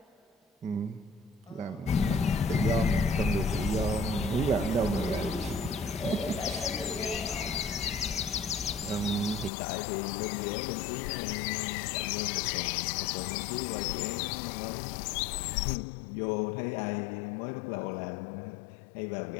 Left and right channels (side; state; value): right; drops out; at 9.5 s